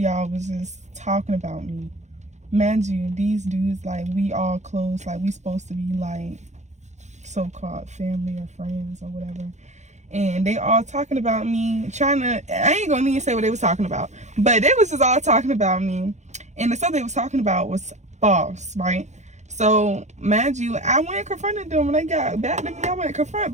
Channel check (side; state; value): left; late; 0.34 ms